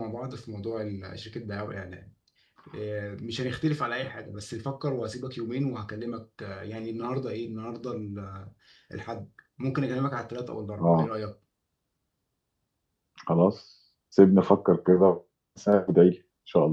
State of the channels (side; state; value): both; identical; correlation 1.00